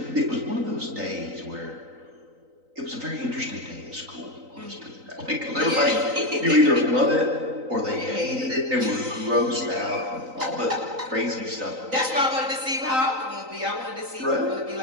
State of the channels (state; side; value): late; left; 3.9 ms